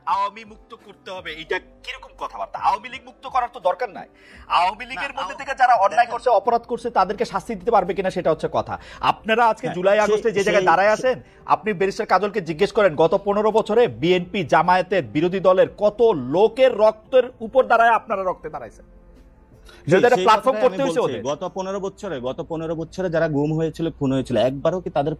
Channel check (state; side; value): identical; both; correlation 1.00